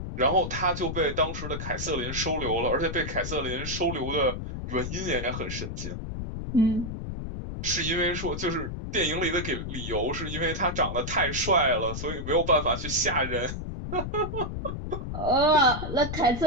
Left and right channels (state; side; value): noise; left; rumble, 6 dB below the sound